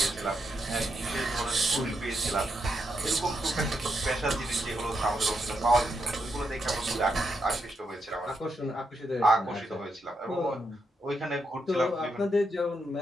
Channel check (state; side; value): normal; both; correlation 0.82